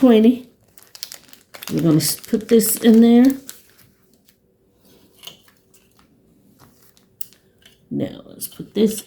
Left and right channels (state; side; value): identical; both; correlation 1.00